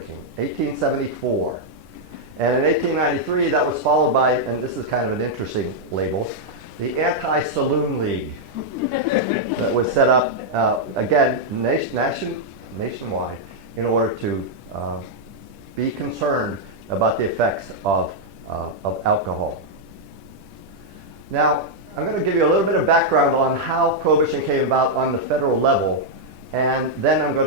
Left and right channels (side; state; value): left; late; 10 ms